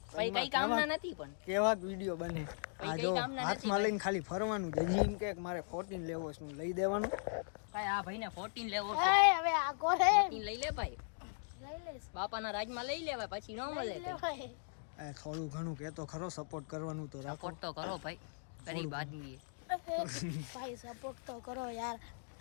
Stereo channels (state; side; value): silent; right; digital silence